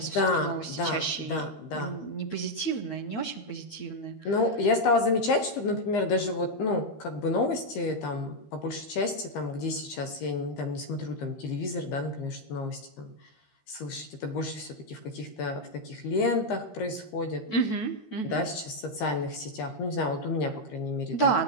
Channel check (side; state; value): right; late; 13 ms